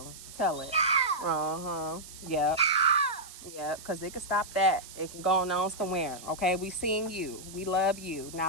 Tell it. Uh-huh. Yep. Yep. Because it can stop that. It can go on somewhere. Okay? We seeing you. We love you.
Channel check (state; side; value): noise; right; hiss, 16 dB below the sound